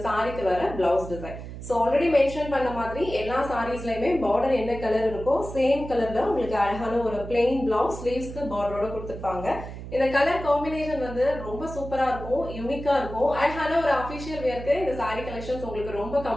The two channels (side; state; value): right; noise; hum, 11 dB below the sound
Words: சாரிக்கு வர blouse design. So already mention பண்ண மாதிரி எல்லா சாரீஸ்லயுமே பார்டர் என்ன கலர் இருக்கோ சேம் கலர்ல உங்களுக்கு அழகான ஒரு பிளெயின் பிளவுஸ் ஸ்லீவ்ஸ்க்கு பார்டரோட கொடுத்திருப்பாங்க. இந்த கலர் காம்பினேஷன் வந்து ரொம்ப சூப்பரா இருக்கும், யூனிக்கா இருக்கும். அழகான ஒரு அபிஷியல் வேர்க்கு இந்த சாரி கலெக்ஷன்ஸ் உங்களுக்கு ரொம்ப